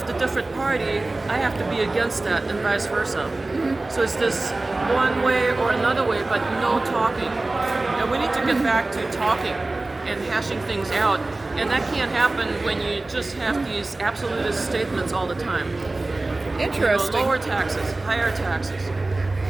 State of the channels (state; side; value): quieter; left; 3.0 dB